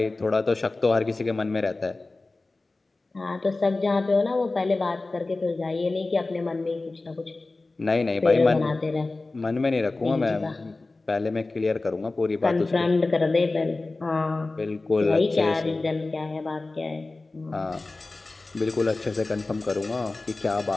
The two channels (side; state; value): right; quieter; 3.3 dB